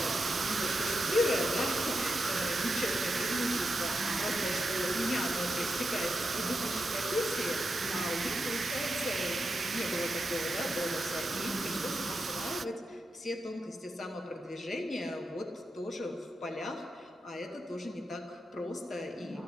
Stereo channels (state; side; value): normal; both; correlation 0.87